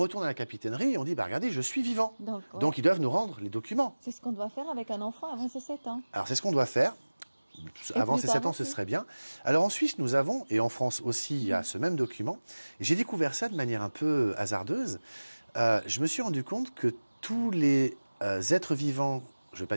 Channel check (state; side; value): inverted; both; correlation -1.00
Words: à la capitainerie et on dit, bah, regardez, je suis vivant. Donc ils doivent nous rendre les documents. C'est ce qu'on doit faire avec un enfant avant ses 7 ans. Alors c'est ce qu'on doit faire. Avant ces 7 ans, ce serait bien. Alors en Suisse, nous avons, et en France aussi, il y a ce même document. Et j'ai découvert ça de manière un peu hasardeuse. Je me suis rendu compte que tous les êtres vivants, je ne vais pas